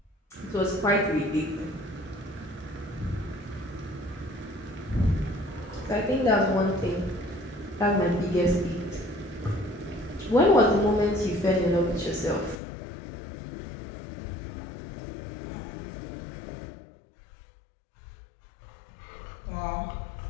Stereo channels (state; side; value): drops out; right; at 12.6 s